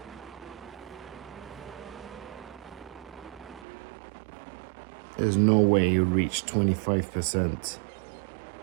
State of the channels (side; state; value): left; drops out; at 3.7 s